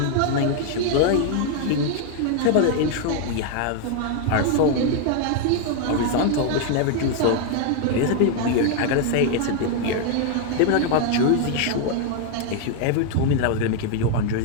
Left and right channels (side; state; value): both; different; correlation 0.00